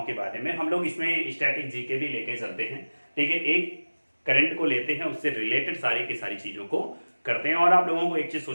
के बारे में हम लोग इसमें स्टैटिक जीके भी लेके चलते हैं। ठीक है, एक करंट को लेते हैं, उससे रिलेटेड सारी की सारी चीजों को करते हैं और आप लोगों को एक चीज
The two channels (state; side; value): inverted; both; correlation -1.00